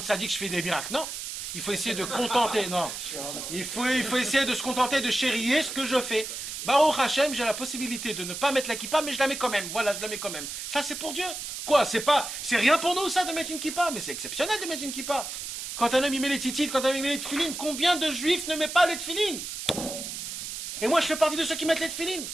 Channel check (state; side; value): noise; right; hiss, 7 dB below the sound